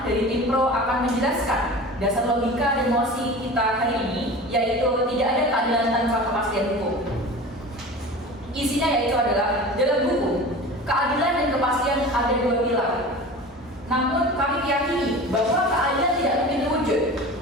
dari tim pro akan menjelaskan dasar logika dan mosi kita hari ini, yaitu tidak ada keadilan tanpa kepastian hukum. Isinya yaitu adalah, dalam hukum, keadilan dan kepastian ada 2 pilar. Namun kami meyakini bahwa keadilan tidak mungkin terwujud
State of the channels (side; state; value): both; normal; correlation 0.36